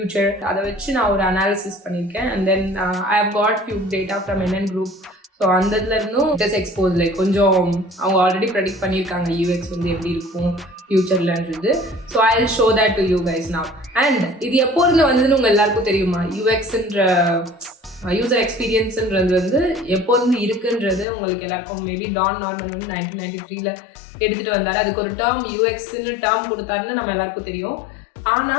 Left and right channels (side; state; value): right; drops out; at 21.1 s